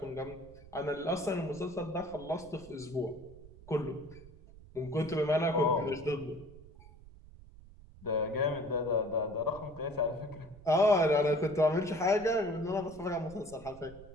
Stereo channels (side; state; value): right; noise; rumble, 20 dB below the sound